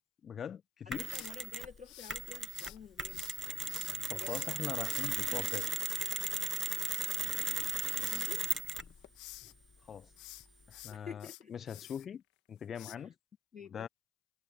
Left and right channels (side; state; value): both; normal; correlation 0.72